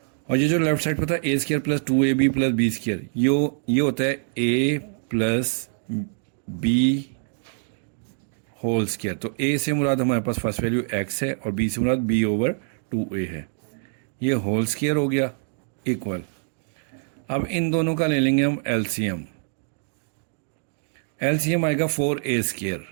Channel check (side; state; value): left; silent; 62 dB below the other